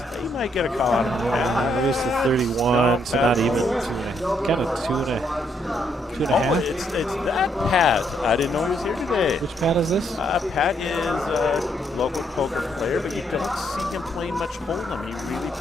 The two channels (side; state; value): both; normal; correlation 0.73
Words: He might get a call out of him. Reduced to 31, so not even kind of two and a half. It's that Pat. I didn't know he was here today. Which Pat is this? Pat is a local poker player, but you don't see him playing much Hold'em. He really